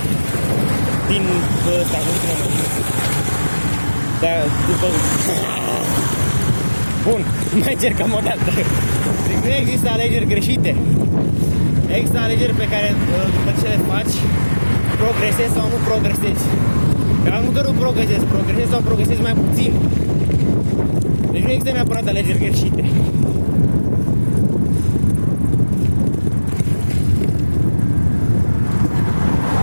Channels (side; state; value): both; inverted; correlation -1.00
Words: din ăsta, nu știu cum mă. Dar după... Bun, mai încercăm o dată. Deci nu există alegeri greșite. Există alegeri pe care după ce le faci, progresezi sau nu progresezi. Dar nu că nu progresezi sau progresezi mai puțin. Deci nu există neapărat alegeri greșite.